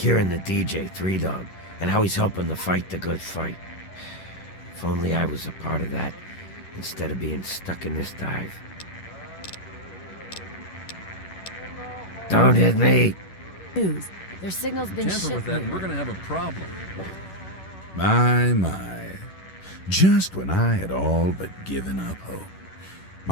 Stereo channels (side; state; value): right; late; 11 ms